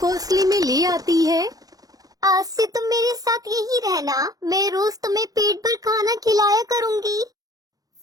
में ले आती है। आज से तुम मेरे साथ यही रहना, मैं रोज तुम्हें पेट भर खाना खिलाया करूँगी।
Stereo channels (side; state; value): left; late; 0.18 ms